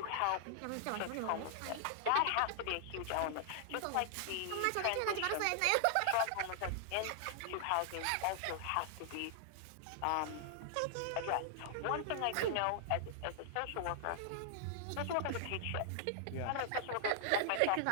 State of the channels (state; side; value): different; both; correlation 0.00